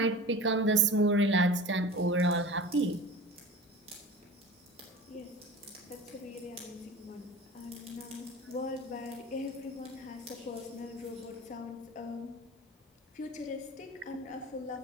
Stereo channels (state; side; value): normal; both; correlation 0.35